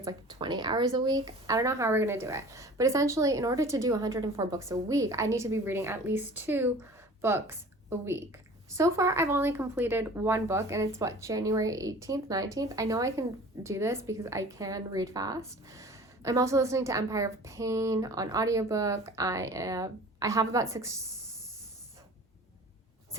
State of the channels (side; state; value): both; normal; correlation 0.44